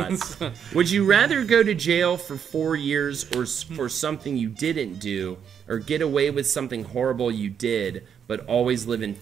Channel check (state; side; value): quieter; left; 7.8 dB